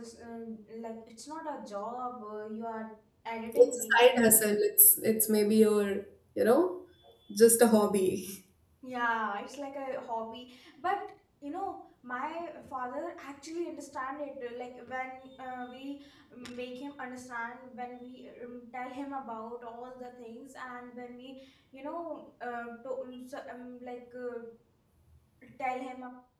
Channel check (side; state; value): both; identical; correlation 1.00